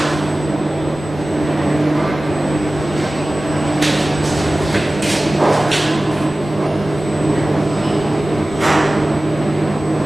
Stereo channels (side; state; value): both; normal; correlation 0.97